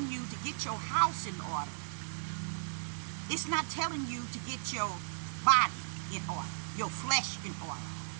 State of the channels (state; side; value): silent; left; digital silence